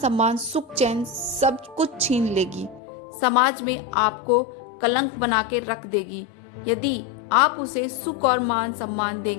सुख चैन सब कुछ छीन लेगी। समाज में आपको कलंक बना के रख देगी। यदि आप उसे सुख और मान सम्मान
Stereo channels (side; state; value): right; drops out; at 2.8 s